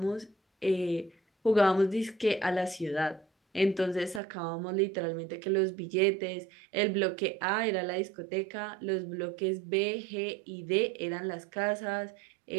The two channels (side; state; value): left; drops out; at 4.2 s